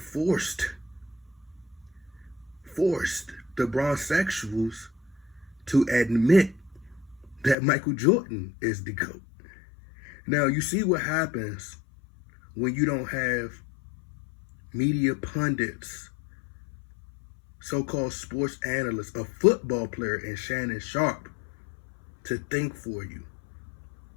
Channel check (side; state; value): right; drops out; at 7.6 s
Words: the sexuals to admit that Michael Jordan is the GOAT. Now, you see what happens when you don't have media pundits, so-called sports analysts, a football player in Shannon Sharpe to think for you.